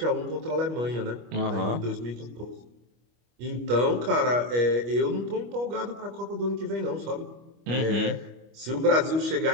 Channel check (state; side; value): late; left; 25 ms